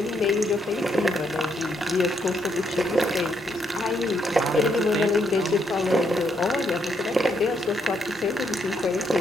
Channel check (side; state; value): both; normal; correlation 0.76